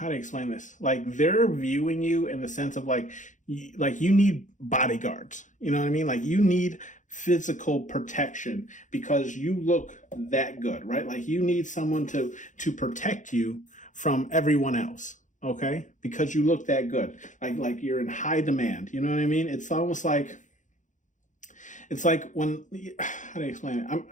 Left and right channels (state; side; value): late; right; 0.36 ms